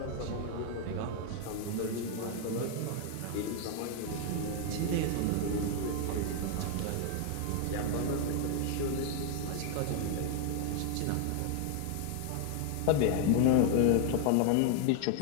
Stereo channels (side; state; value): both; different; correlation 0.00